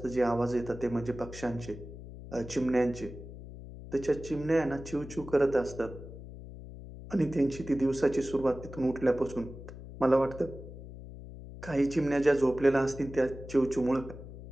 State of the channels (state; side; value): noise; left; hum, 13 dB below the sound